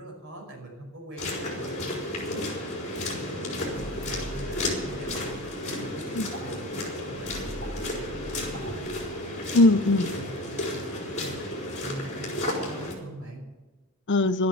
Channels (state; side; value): normal; both; correlation 0.32